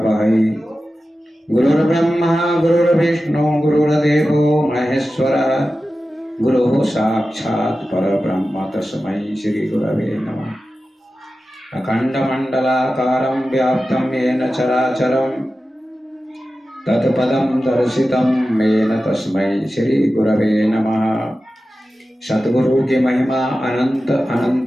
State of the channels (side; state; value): both; normal; correlation 0.94